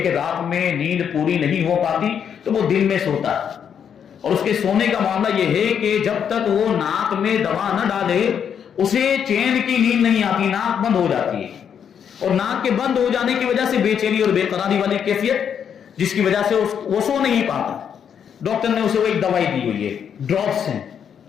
رات میں نیند پوری نہیں ہو پاتی تو وہ دن میں سوتا ہے, اور اس کے سونے کا معاملہ یہ ہے کہ جب تک وہ ناک میں دوا نہ ڈالے اسے چین کی نیند نہیں آتی, ناک بند ہو جاتی ہے, اور ناک کے بند ہو جانے کی وجہ سے بے چینی اور بے قراری والی کیفیت جس کی وجہ سے وہ سو نہیں پاتا. ڈاکٹر نے اسے وہ ایک دوائی دی ہوئی ہے, ڈراپس ہیں,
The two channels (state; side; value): quieter; right; 8.0 dB